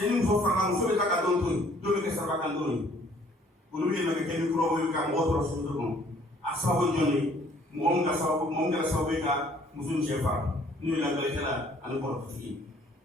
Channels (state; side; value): normal; both; correlation 0.59